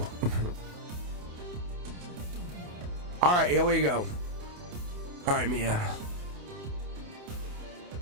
All right, here we go. All right, Mia.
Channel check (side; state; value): left; late; 28 ms